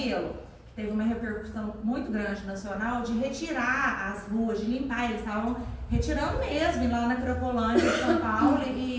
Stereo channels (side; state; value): both; identical; correlation 1.00